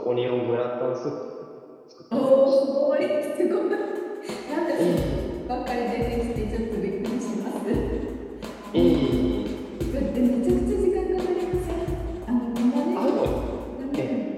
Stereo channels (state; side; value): identical; both; correlation 1.00